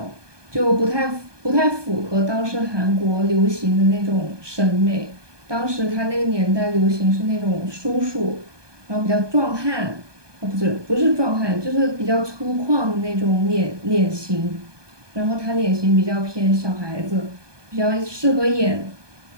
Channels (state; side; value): late; left; 1.2 ms